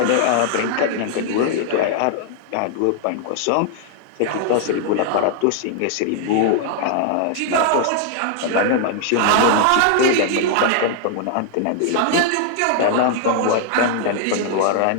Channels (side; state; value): both; different; correlation 0.00